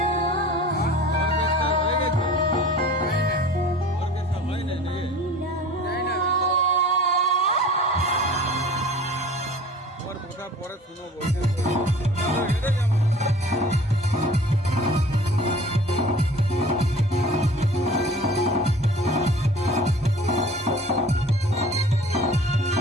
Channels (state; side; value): normal; both; correlation 0.44